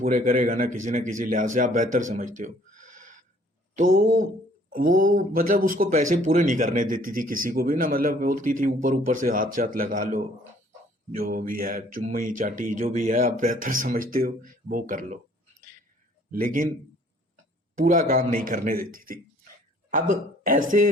करेगा ना किसी लिहाज से, आप बेहतर समझते हो। तो वो मतलब उसको पैसे पूरे नहीं करने देती थी किसी को भी ना, मतलब बोलती थी ऊपर ऊपर से हाथ चात लगा लो, जो भी है चुम्मी चाटी जो भी है आप बेहतर समझते हो वो कर लो, लेकिन पूरा काम नहीं करने देती थी। अब ऐसे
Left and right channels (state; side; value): normal; both; correlation 0.58